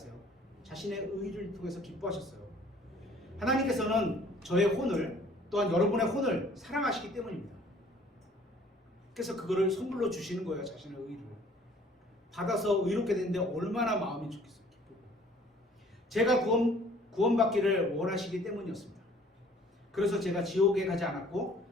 자신의 의를 통해서 기뻐하셨어요. 하나님께서는 저의 혼을 또한 여러분의 혼을 사랑하시기 때문입니다. 그래서 그거를 선물로 주시는 거예요. 자신의 의를 받아서 의롭게 되는데 얼마나 마음이 좋겠어요. 기쁘고. 제가 구원받기를 원하시기 때문이었습니다. 그래서 제가 지옥에 가지 않았고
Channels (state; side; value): normal; both; correlation 0.55